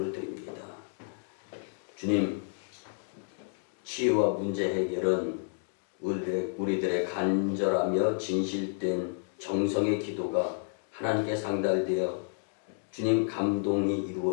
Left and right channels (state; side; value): silent; right; digital silence